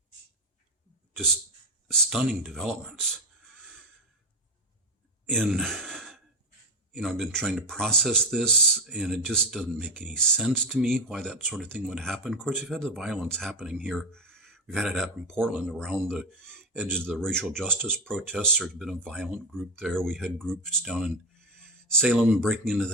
just stunning developments. And, I've been trying to process this, and it just doesn't make any sense to me why that sort of thing would happen. Of course, we've had the violence happening here. We've had it happen in Portland around the edges of the racial justice protests. There's been a violent group there. We had groups down in Salem breaking into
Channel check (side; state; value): both; normal; correlation 0.15